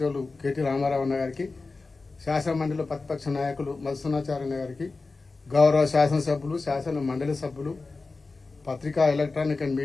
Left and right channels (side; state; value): right; quieter; 3.8 dB